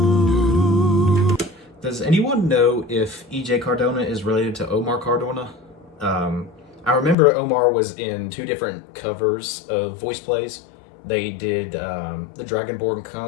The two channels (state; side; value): drops out; right; at 7.2 s